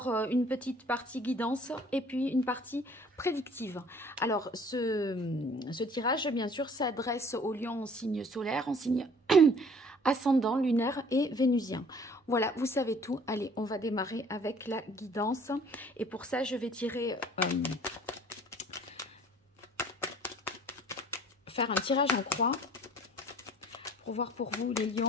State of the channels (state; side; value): normal; both; correlation 0.54